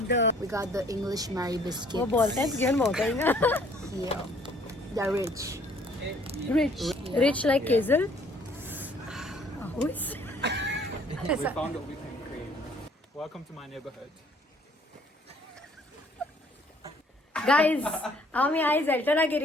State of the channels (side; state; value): both; normal; correlation 0.59